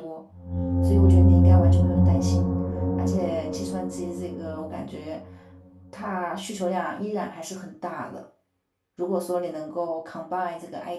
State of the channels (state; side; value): identical; both; correlation 1.00